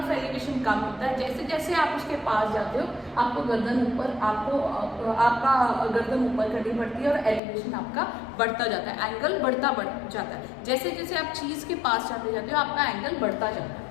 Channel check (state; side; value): drops out; right; at 7.4 s